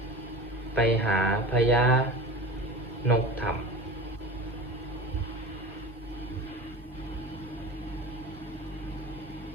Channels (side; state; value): both; normal; correlation 0.34